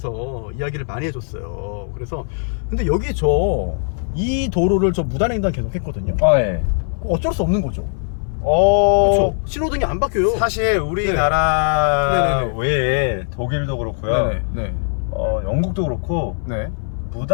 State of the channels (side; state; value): right; silent; 61 dB below the other